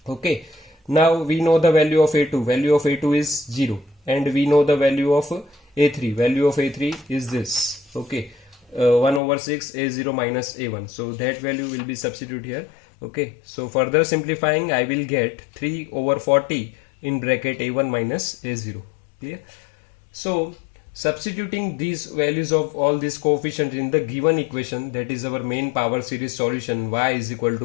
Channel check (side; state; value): right; drops out; at 9.2 s